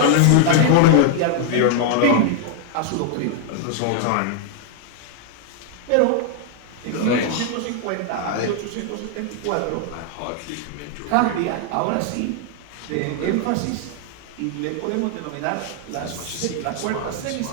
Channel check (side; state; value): both; different; correlation 0.00